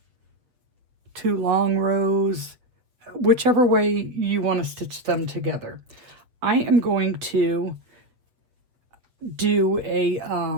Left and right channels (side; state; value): left; late; 7.9 ms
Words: 2 long rows, whichever way you want to stitch them together. I am going to do a